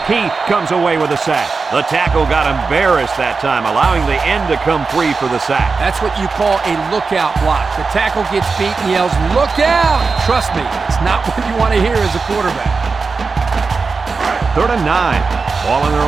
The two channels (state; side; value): quieter; left; 4.5 dB